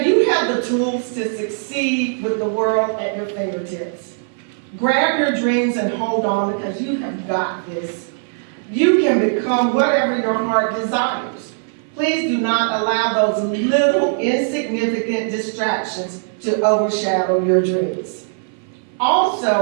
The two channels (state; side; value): silent; left; 60 dB below the other